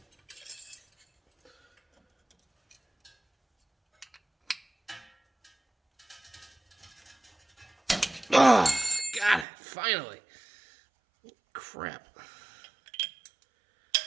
Oh, got it, finally. Crap.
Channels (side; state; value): left; drops out; at 9.5 s